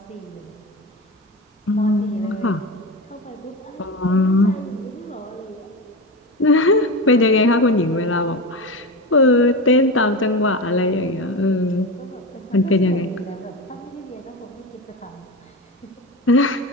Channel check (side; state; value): both; normal; correlation 0.22